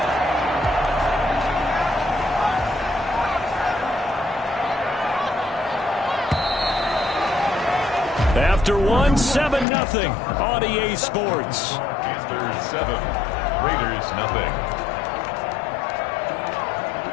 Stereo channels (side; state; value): right; drops out; at 9.7 s